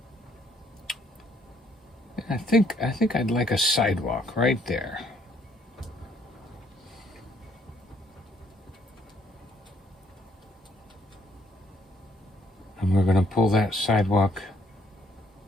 I think I'd like a sidewalk right there. And we're going to pull that sidewalk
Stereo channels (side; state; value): both; normal; correlation 0.66